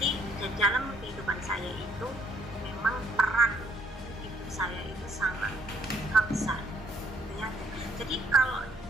dalam kehidupan saya itu memang peran ibu saya itu sangat besar ya. Jadi kalau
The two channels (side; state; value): both; normal; correlation 0.67